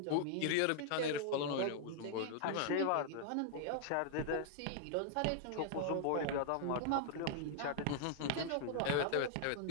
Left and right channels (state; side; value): different; both; correlation -0.01